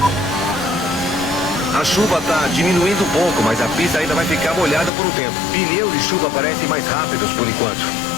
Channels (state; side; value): drops out; right; at 4.9 s